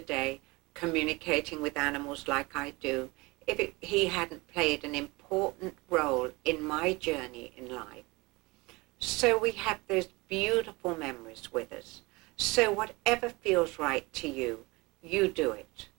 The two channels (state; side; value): quieter; left; 24.0 dB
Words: communicating with animals like I do, if he hadn't played an important role in my journey in life. So we have those beautiful memories with us. So whatever feels right to you, you do it.